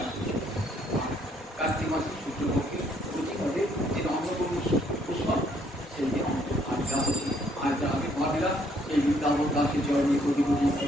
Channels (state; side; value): normal; both; correlation 0.67